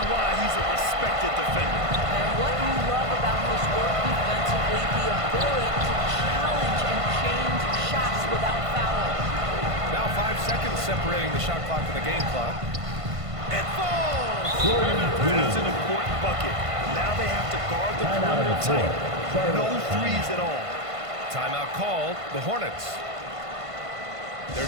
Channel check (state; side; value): late; left; 1.5 ms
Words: why he's a respected defender. And what you love about his work defensively, the ability to challenge and change shots without fouling. Now 5 seconds separating the shot clock and the game clock. It falls! That's an important bucket. Now they have to guard the perimeter tight. No threes at all. Timeout called, the Hornets.